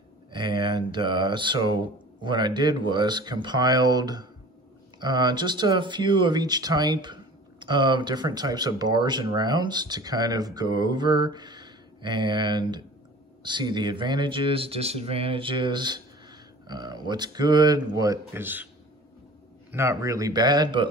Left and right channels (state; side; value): normal; both; correlation 0.43